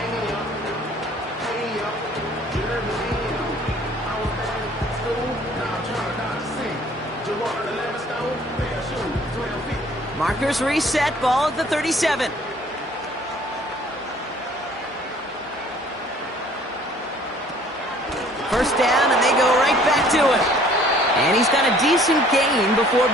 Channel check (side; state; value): both; normal; correlation 0.55